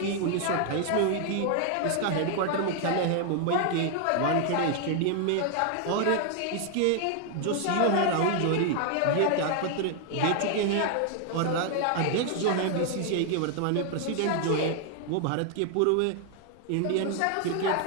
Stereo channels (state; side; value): different; both; correlation 0.00